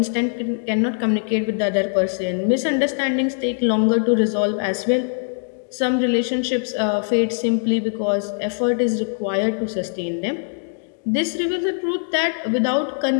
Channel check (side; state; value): right; silent; digital silence